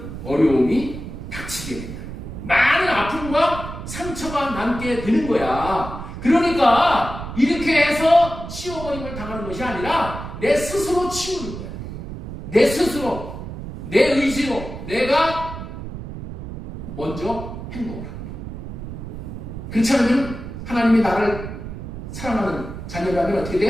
어려움이 닥치게 됩니다. 많은 아픔과 상처가 남게 되는 거야. 그러니까 이렇게 해서 치워버림을 당하는 것이 아니라 내 스스로 치우는 거야. 내 스스로, 내 의지로 내가 먼저 행동을 합니다. 그렇지 않으면 하나님이 나를 사랑하는 자녀라면 어떻게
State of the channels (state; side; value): noise; right; rumble, 9 dB below the sound